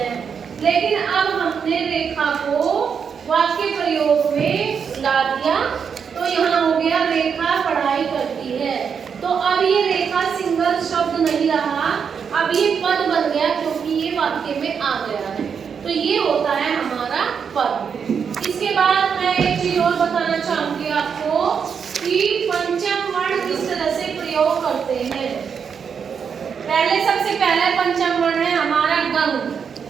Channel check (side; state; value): left; quieter; 6.7 dB